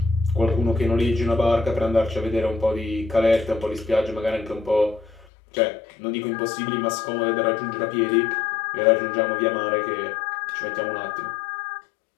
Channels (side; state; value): right; drops out; at 5.2 s